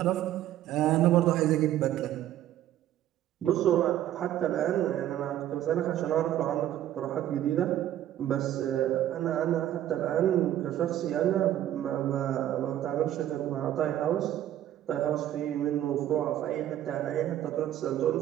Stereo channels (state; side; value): quieter; left; 12.2 dB